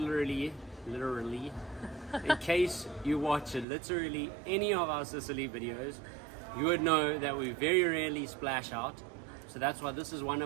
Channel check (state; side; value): drops out; left; at 3.7 s